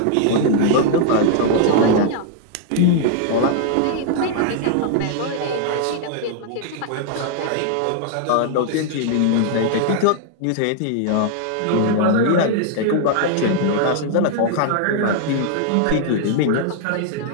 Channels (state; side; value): different; both; correlation -0.01